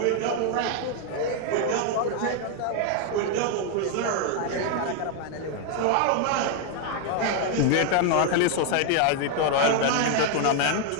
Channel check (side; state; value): both; different; correlation 0.00